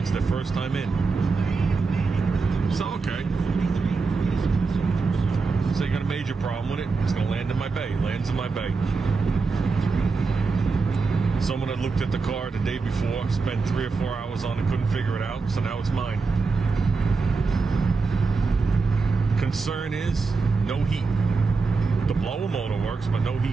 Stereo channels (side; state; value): left; quieter; 4.3 dB